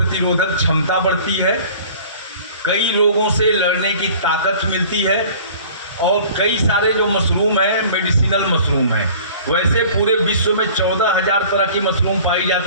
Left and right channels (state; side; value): inverted; both; correlation -0.47